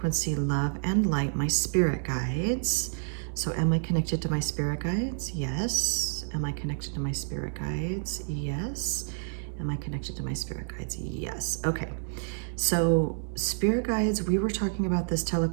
love, and light, my spirit guides. So am I connected to my spirit guides? Yes. Am I connected to my spirit guides? Yes. Am I connected to my spirit guides? Yes. Okay. So spirit guides, we were talking about this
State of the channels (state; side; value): silent; left; digital silence